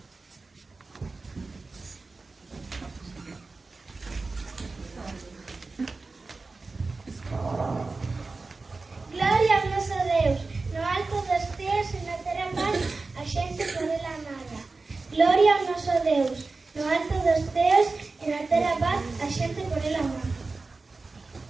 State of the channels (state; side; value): quieter; left; 3.8 dB